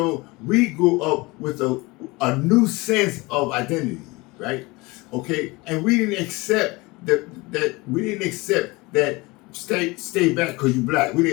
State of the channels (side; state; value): right; quieter; 23.6 dB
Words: we grew up with a new sense of identity, right? Okay, and we didn't accept that stay back because you're black. We